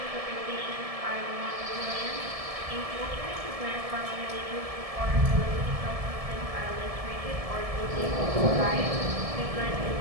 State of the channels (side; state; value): left; late; 1.7 ms